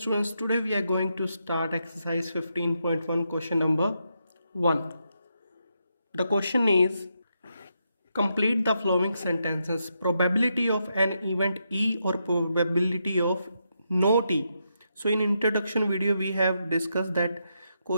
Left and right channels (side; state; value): both; inverted; correlation -0.82